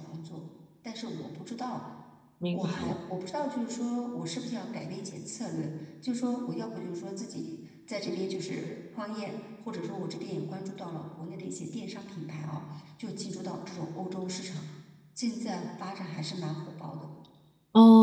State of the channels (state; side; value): identical; both; correlation 1.00